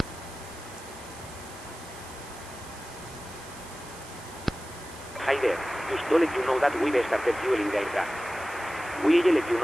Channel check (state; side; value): noise; right; hiss, 18 dB below the sound